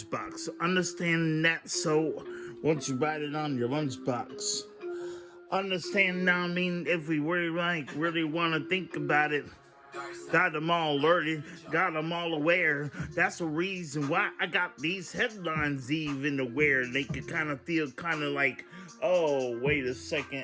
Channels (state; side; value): identical; both; correlation 1.00